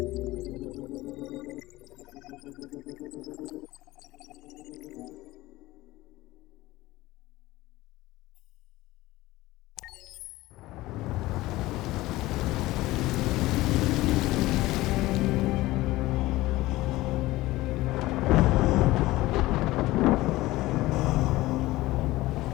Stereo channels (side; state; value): right; quieter; 18.3 dB